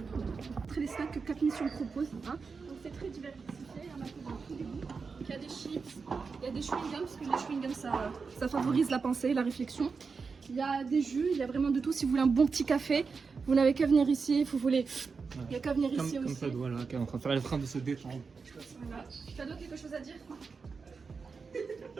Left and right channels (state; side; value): quieter; left; 5.0 dB